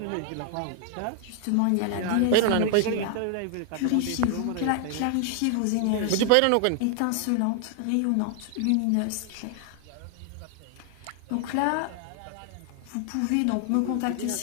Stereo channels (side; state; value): both; different; correlation 0.00